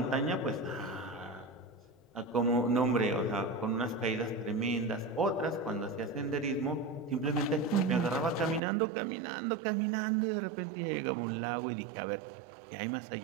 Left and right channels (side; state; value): left; drops out; at 8.6 s